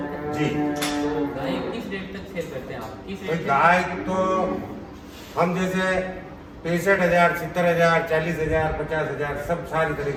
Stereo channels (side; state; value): both; identical; correlation 1.00